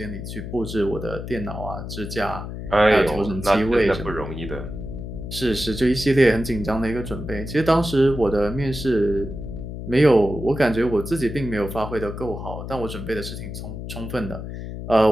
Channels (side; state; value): left; noise; hum, 8 dB below the sound